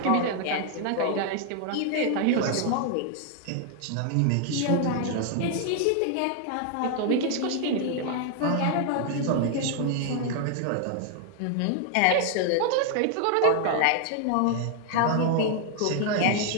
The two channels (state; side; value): different; both; correlation 0.00